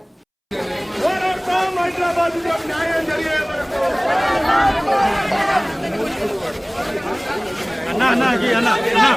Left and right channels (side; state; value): both; identical; correlation 1.00